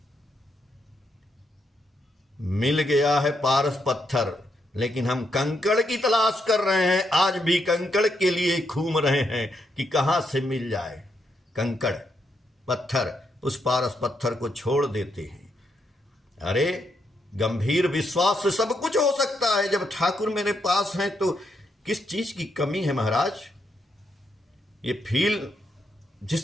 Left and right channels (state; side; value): normal; both; correlation 0.79